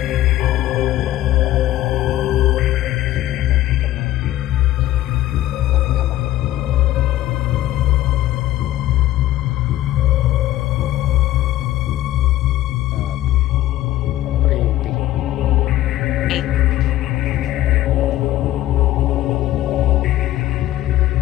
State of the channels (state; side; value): quieter; right; 14.3 dB